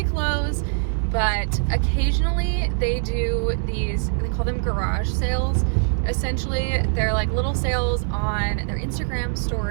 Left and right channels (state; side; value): silent; left; digital silence